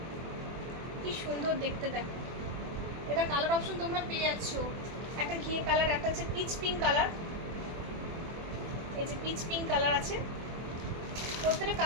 কি সুন্দর দেখতে, দেখো। এটা কালার অপশন তোমরা পেয়ে যাচ্ছ, একটা ঘিয়ে কালার, একটা হচ্ছে পিচ পিঙ্ক কালার। এই যে পিচ পিঙ্ক কালার আছে, প্রত্যেকটা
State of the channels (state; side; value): late; left; 24 ms